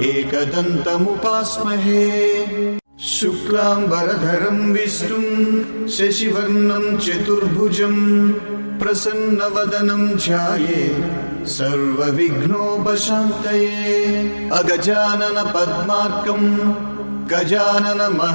एकदन्तमुपास्महे शुक्लाम्बरधरं विष्णुं शशिवर्णं चतुर्भुजं प्रसन्नवदनं ध्यायेत् सर्वविघ्नोपशान्तये अगजानन पद्मार्कं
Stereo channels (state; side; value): inverted; both; correlation -1.00